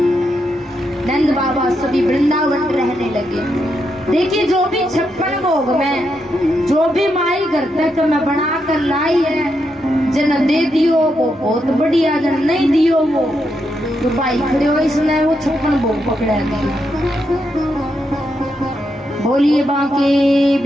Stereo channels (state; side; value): normal; both; correlation 0.82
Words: नंद बाबा सभी वृंदावन रहने लगे। देखिए जो भी 56 भोग में जो भी माई घर तक मैं बना कर लाई है, जन दे दियो वो बहुत बढ़िया, जन नहीं दियो वो तो भाई खड़े हो इसने वो 56 भोग पकड़ा दिए। बोलिए बांके